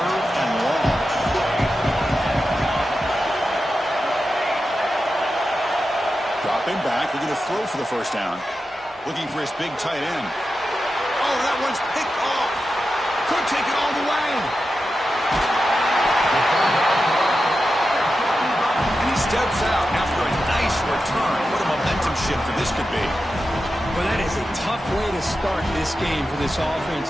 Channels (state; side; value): normal; both; correlation 0.91